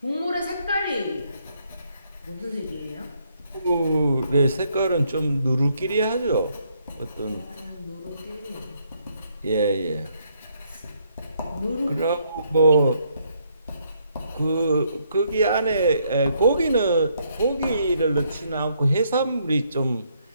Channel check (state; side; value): inverted; both; correlation -0.72